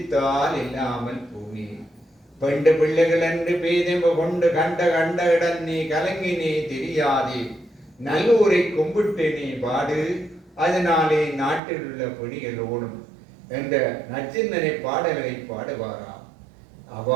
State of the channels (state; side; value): drops out; left; at 11.6 s